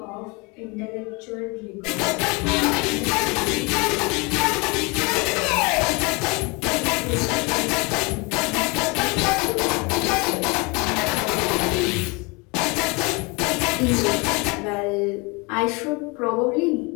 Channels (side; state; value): right; quieter; 28.3 dB